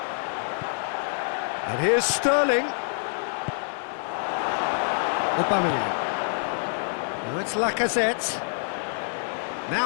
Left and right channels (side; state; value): right; silent; 61 dB below the other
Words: And here's Sterling. Aubameyang. Now it's Lacazette.